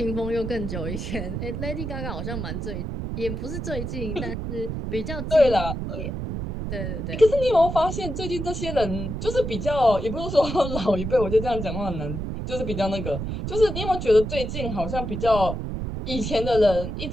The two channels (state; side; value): noise; right; rumble, 4 dB below the sound